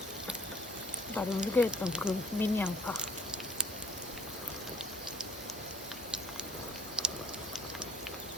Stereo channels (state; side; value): normal; both; correlation 0.57